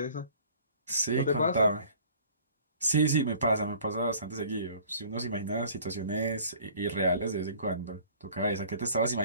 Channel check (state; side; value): inverted; both; correlation -0.50